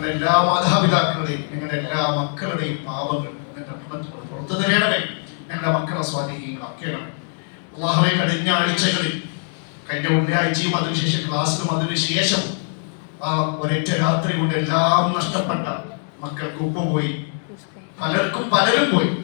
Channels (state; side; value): silent; right; 57 dB below the other